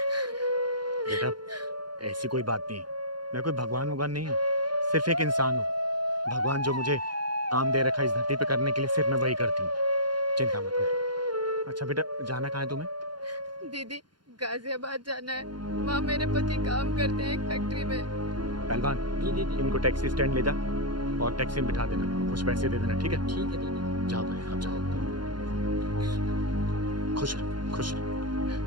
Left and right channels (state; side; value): late; left; 0.71 ms